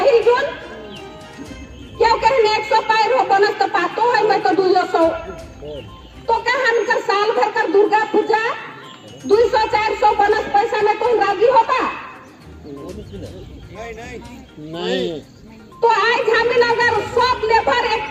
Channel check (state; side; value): identical; both; correlation 1.00